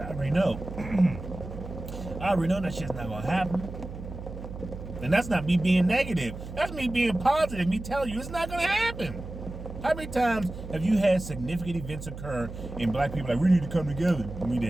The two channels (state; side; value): noise; right; hum, 11 dB below the sound